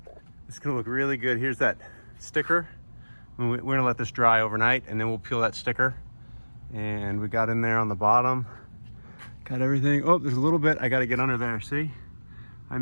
It's gonna look really good. Here's that sticker. We're gonna let this dry overnight and then we'll peel that sticker. And we got in there on the bottom. Got everything. Oh, there's a little bit. I gotta get under there, see? I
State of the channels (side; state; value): both; inverted; correlation -1.00